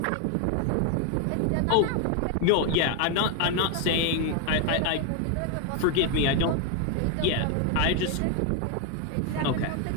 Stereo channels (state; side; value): different; both; correlation 0.01